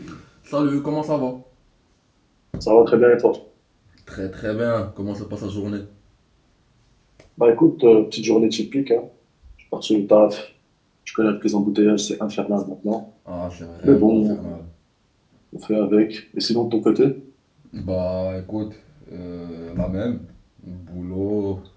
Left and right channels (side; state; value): both; identical; correlation 1.00